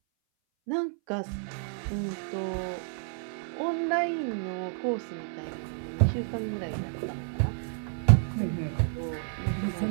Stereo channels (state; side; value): silent; left; 58 dB below the other